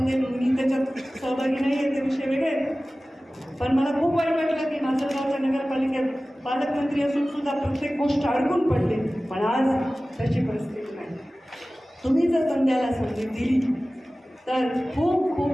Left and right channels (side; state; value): both; normal; correlation 0.97